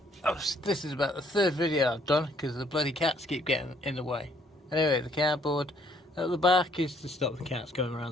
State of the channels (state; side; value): normal; both; correlation 0.65